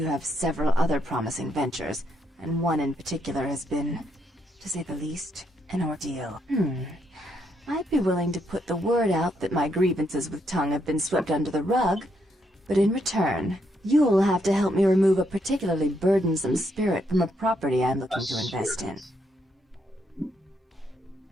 have several other promising ventures, and one in particular has been, to say the least, an ordeal. I'd be willing to put the word out that my grievances with Tongue have been swept under the rug, but in return, you'll have to help me remove a particularly burdensome spirit from a property I'm looking to invest in.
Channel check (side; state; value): both; normal; correlation 0.76